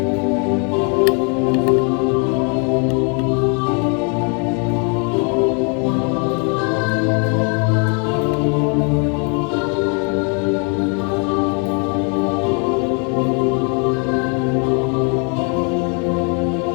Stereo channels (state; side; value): quieter; right; 37.3 dB